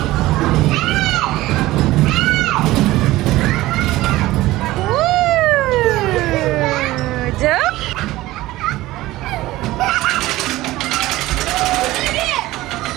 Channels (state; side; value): quieter; left; 17.4 dB